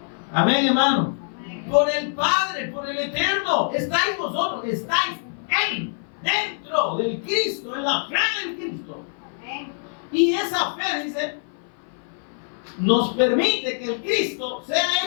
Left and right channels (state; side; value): silent; right; 56 dB below the other